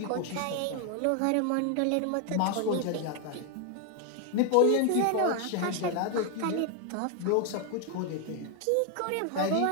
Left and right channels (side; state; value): both; different; correlation 0.01